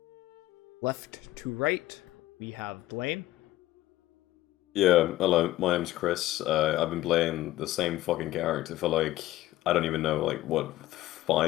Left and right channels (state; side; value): quieter; right; 15.7 dB